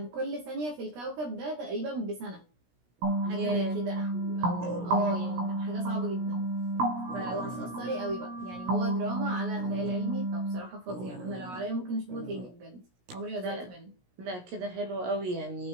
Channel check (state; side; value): late; left; 17 ms